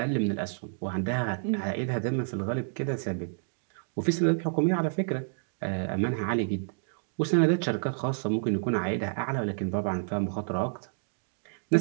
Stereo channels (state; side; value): silent; left; digital silence